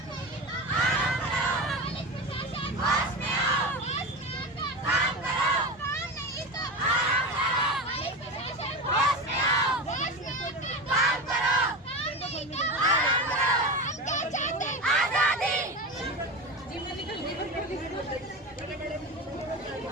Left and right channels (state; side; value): normal; both; correlation 0.23